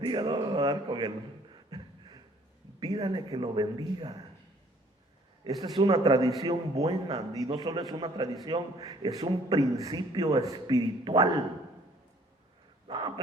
No me va a dar con él. Pídale que lo bendiga. Esta es una tradición buena, y no solo es una tradición, es un principio espiritual. No,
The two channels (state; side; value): normal; both; correlation 0.58